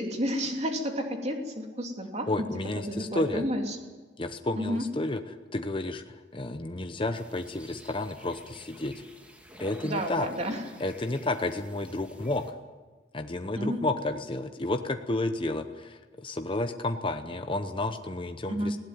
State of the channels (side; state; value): both; normal; correlation 0.52